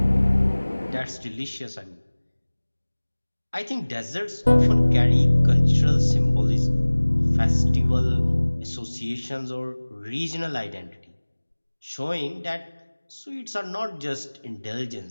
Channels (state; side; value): inverted; both; correlation -1.00